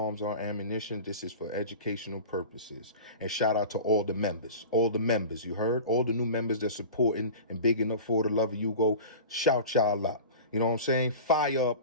or ammunition. This is for educational purposes. And shout out to all the members. All the members, you heard? All the new members that supporting and bigging up for the love of Yugo. Shout y'all out. You know what I'm saying? Fire up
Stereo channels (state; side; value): inverted; both; correlation -0.35